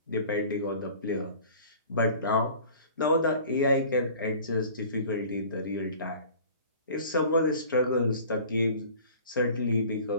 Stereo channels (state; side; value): inverted; both; correlation -0.46